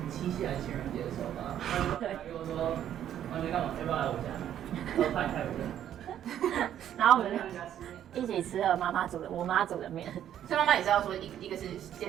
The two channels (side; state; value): left; quieter; 10.6 dB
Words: 七夕还是情人节的时候吧，他跟我说完全干嘛，要不要来我家？我说派我家。然后我们一起吃了我妈煮的面。所以妈妈也知道说一个是